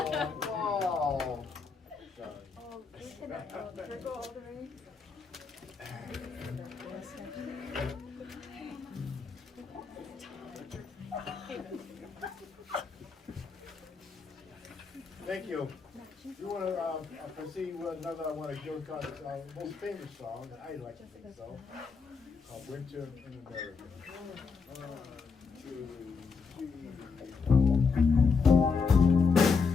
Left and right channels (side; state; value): right; quieter; 5.1 dB